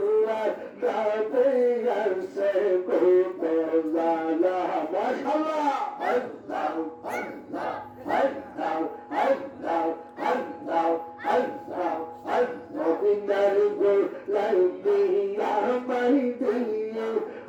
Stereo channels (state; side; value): identical; both; correlation 1.00